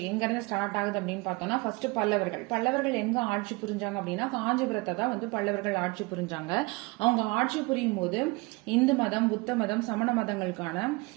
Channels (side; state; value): left; quieter; 25.7 dB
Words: எங்கேருந்து ஸ்டார்ட் ஆகுது அப்படின்னு பார்த்தோம்னா, ஃபர்ஸ்ட் பல்லவர்கள் எங்கே ஆட்சி புரிஞ்சாங்க அப்படின்னா காஞ்சிபுரத்தை தான் பல்லவர்கள் ஆட்சி புரிஞ்சாங்க. அவங்க ஆட்சி புரியும் போது இந்து மதம், புத்த மதம், சமண மதங்களுக்கான